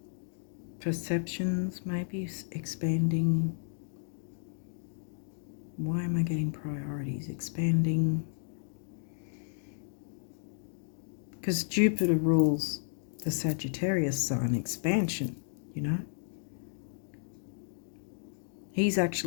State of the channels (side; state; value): right; silent; digital silence